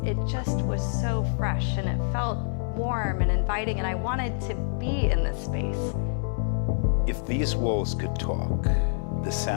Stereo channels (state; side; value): silent; right; digital silence